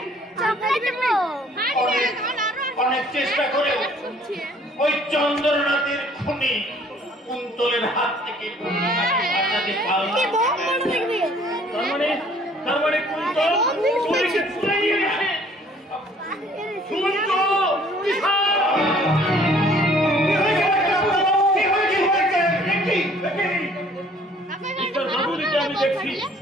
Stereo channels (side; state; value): both; normal; correlation 0.57